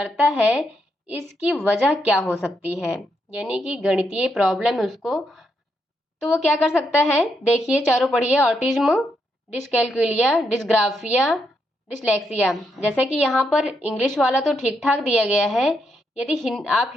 है, इसकी वजह क्या हो सकती है। यानी कि गणितीय प्रॉब्लम है उसको, तो वो क्या कर सकता है। देखिए चारों पढ़िए, ऑटिज्म, डिसकैलकुलिया, डिस्ग्राफिया, डिसलेक्सिया। जैसे कि यहाँ पर इंग्लिश वाला तो ठीक ठाक दिया गया है, यदि आप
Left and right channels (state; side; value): normal; both; correlation 0.80